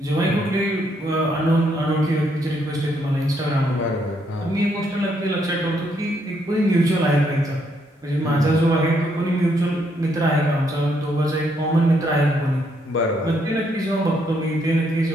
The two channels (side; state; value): both; normal; correlation 0.74